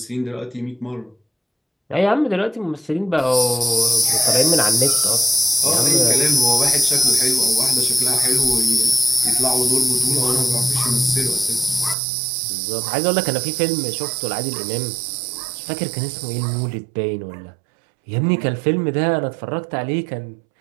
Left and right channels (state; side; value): drops out; left; at 12.0 s